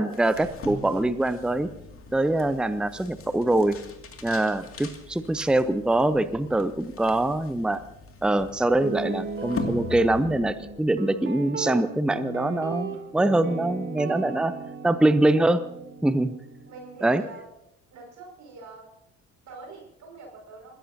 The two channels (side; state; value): both; normal; correlation 0.88